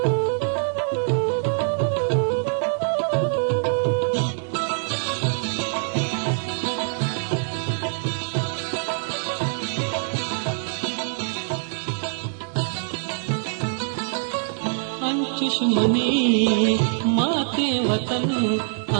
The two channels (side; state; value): left; silent; digital silence